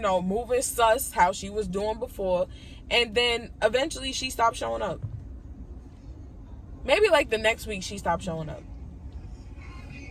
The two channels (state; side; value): identical; both; correlation 1.00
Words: sus, how she was doing before. And then eventually she stopped showing up. Maybe like the next week she stopped showing up.